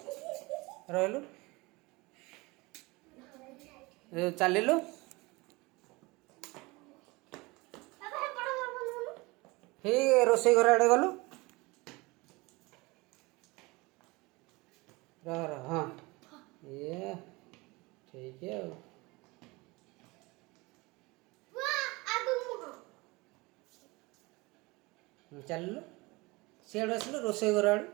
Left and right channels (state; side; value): quieter; left; 24.0 dB